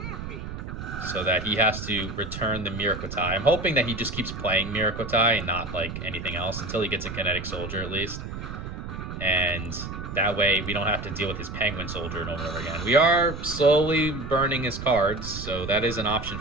so that he has to return the Miracle tie. I'm hoping that he just keeps playing Miracle tie and not like anything else until he gets a Kinetic Soldier at least. And that way we don't have to deal with his Penguin Soldier over and over again. We are slowly burning his cards, so that is an option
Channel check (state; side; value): noise; right; rumble, 8 dB below the sound